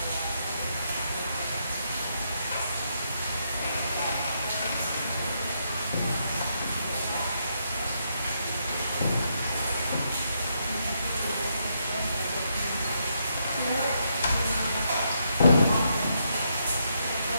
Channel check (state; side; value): inverted; both; correlation -0.78